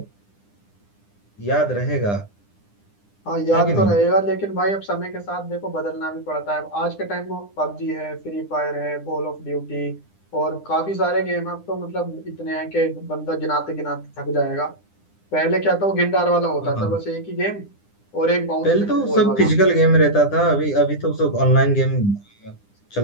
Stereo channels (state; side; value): late; right; 9.9 ms